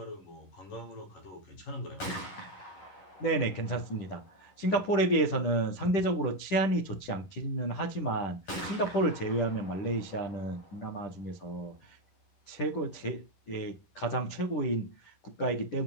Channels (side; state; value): right; late; 11 ms